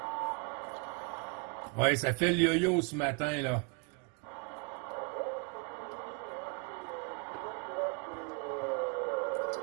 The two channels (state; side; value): quieter; left; 33.0 dB